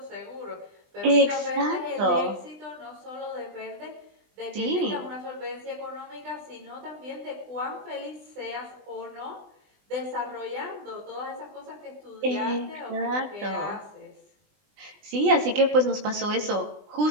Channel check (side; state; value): left; late; 20 ms